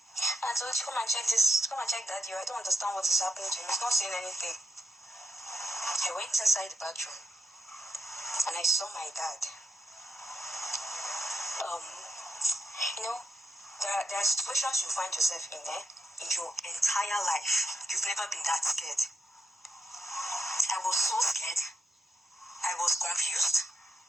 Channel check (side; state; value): both; normal; correlation 0.84